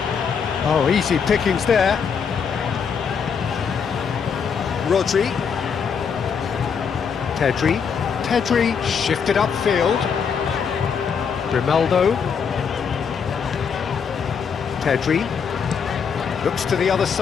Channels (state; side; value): quieter; right; 6.5 dB